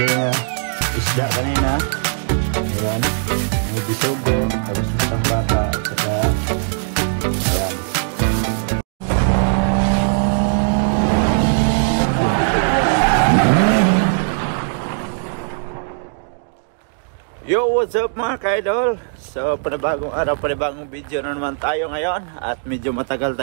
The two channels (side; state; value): left; silent; digital silence